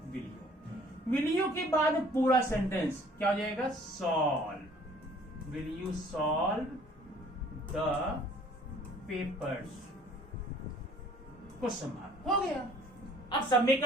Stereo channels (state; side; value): normal; both; correlation 0.55